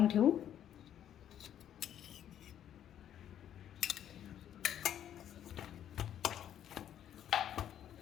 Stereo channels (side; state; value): right; quieter; 10.4 dB